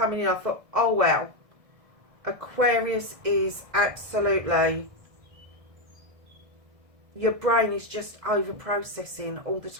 in, I thought, oh wow, Aquarius is absolutely, your brain is just over processing all the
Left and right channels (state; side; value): late; left; 1.6 ms